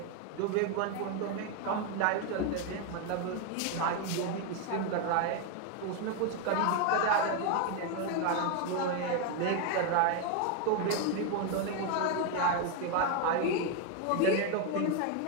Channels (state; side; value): different; both; correlation 0.01